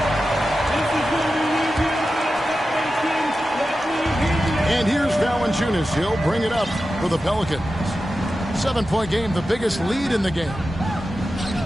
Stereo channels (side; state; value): both; normal; correlation 0.92